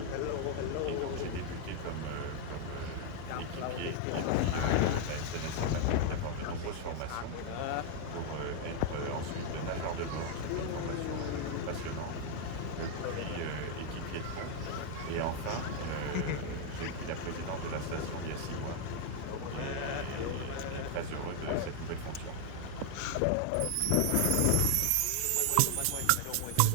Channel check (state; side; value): different; both; correlation 0.01